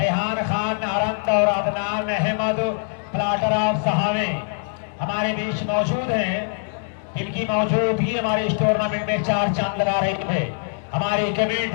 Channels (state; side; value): silent; right; digital silence